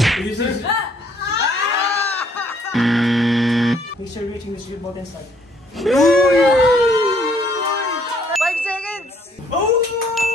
Ignition. Make sure reaching the shoot button start. 5 seconds!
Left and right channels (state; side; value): normal; both; correlation 0.64